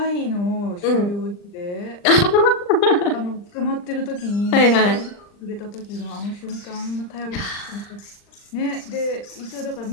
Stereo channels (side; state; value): right; late; 39 ms